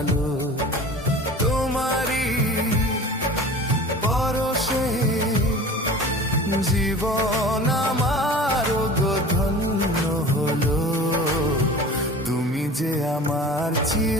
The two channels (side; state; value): both; normal; correlation 0.40